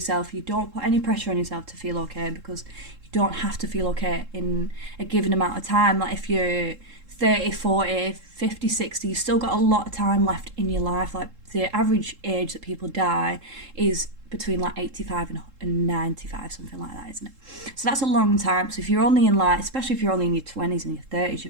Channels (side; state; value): left; late; 3.7 ms